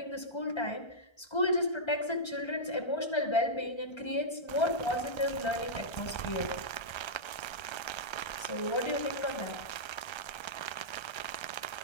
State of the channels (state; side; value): late; right; 1.3 ms